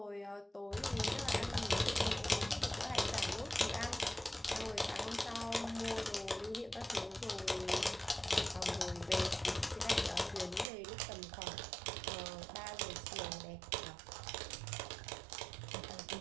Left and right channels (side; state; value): left; drops out; at 10.7 s